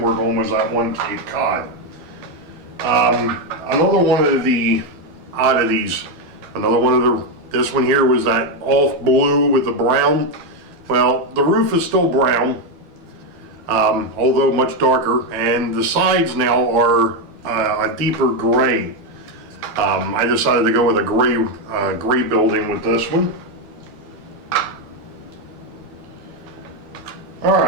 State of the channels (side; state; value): left; late; 12 ms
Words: work on was that one Cape Cod. Another one of the oddities, this one here was that off blue with the brown. Well, the roof is still brown. Although much darker, and the sides now are a deeper gray. I decided to go with a gray building with this one.